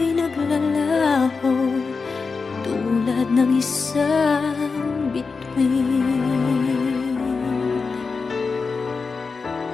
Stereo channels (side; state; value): right; quieter; 4.7 dB